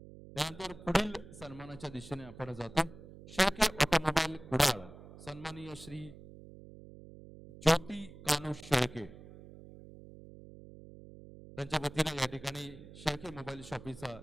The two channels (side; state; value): right; noise; hum, 17 dB below the sound